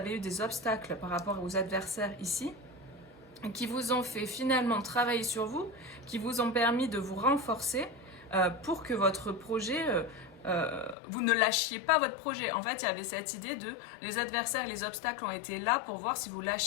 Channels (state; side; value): drops out; right; at 11.0 s